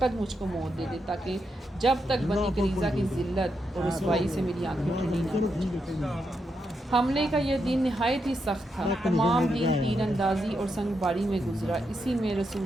مجھ کو موت دے دے تاکہ جب تک بنی قریظہ کی ذلت اور رسوائی سے میری آنکھیں ٹھنڈی نہ ہو۔ حملے کا یہ دن نہایت ہی سخت تھا، تمام دن تیر اندازی اور سنگ باری میں گزرا۔ اسی میں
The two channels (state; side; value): normal; both; correlation 0.83